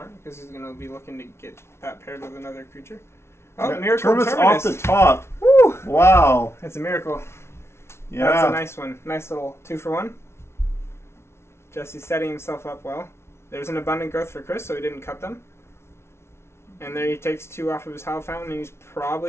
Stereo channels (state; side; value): late; right; 0.13 ms